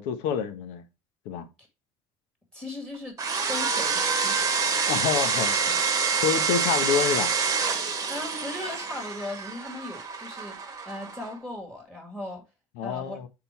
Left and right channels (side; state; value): both; normal; correlation 0.05